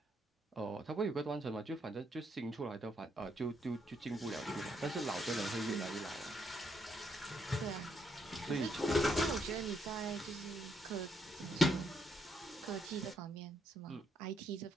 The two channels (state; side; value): normal; both; correlation 0.75